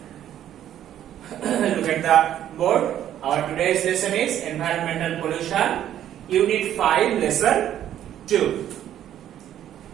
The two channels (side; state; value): left; quieter; 11.2 dB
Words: at the board. Our today's lesson is environmental pollution, Unit 5, Lesson 2.